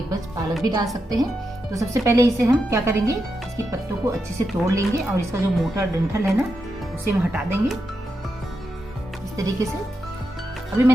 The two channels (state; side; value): normal; both; correlation 0.86